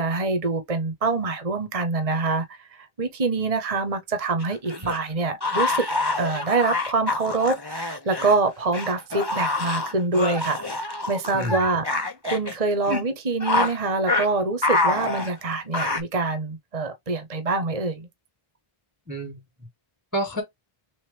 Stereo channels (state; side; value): late; left; 1.1 ms